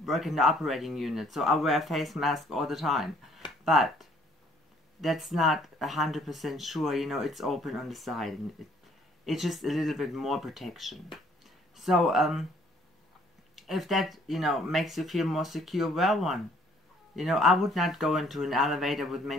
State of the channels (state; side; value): normal; both; correlation 0.62